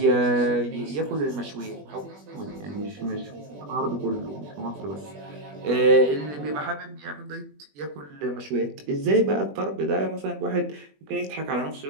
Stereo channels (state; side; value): late; left; 21 ms